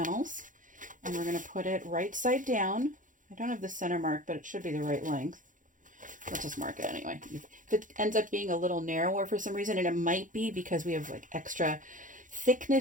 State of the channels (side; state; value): left; late; 0.38 ms